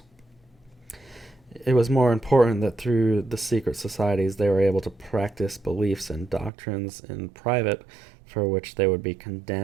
It was more important that through the secret societies they were able to practice beliefs and doctrines in private, for which they would be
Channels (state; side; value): drops out; left; at 6.5 s